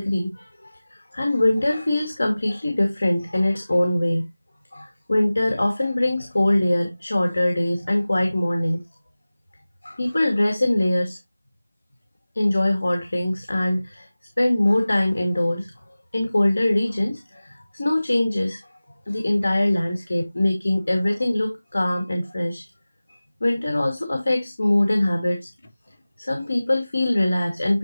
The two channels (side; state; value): both; inverted; correlation -0.98